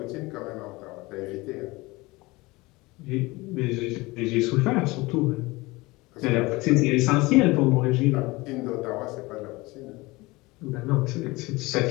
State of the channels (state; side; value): quieter; right; 22.3 dB